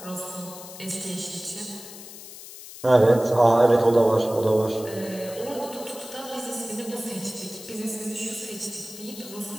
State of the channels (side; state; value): left; noise; hiss, 15 dB below the sound